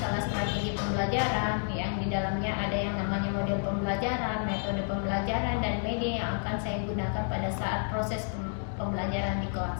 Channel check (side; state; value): right; silent; 58 dB below the other